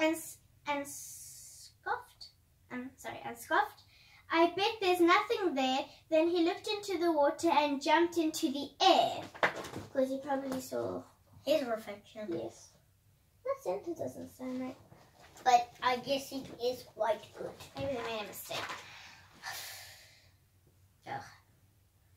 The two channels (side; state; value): both; identical; correlation 1.00